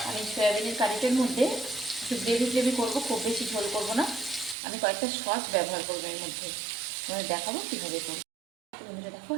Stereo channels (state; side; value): drops out; left; at 4.5 s